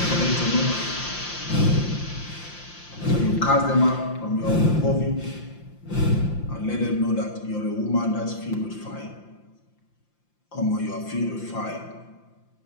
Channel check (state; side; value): late; right; 5.8 ms